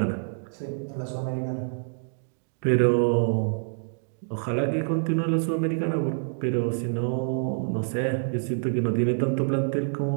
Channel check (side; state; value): left; silent; digital silence